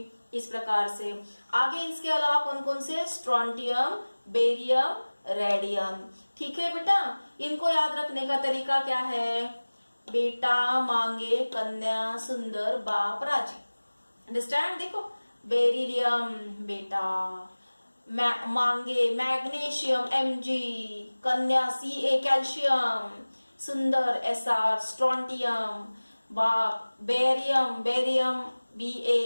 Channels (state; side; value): inverted; both; correlation -1.00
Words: इस प्रकार से आगे इसके अलावा कौन कौन से? Strontium, barium, radium. ठीक है बेटा। इनको याद रखने का तरीका क्या है? बेटा मांगे कन्या सुंदर बाप राजी। अंडरस्टैंड। देखो बेरिलियम बेटा, मांगे मैग्नीशियम Mg, कन्या Ca, कैल्शियम, सुंदर Sr, स्ट्रोंटियम, बाप बेरियम Ba,